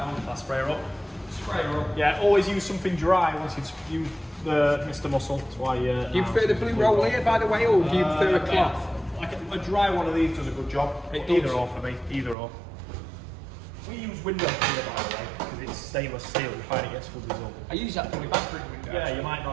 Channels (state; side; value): drops out; left; at 12.4 s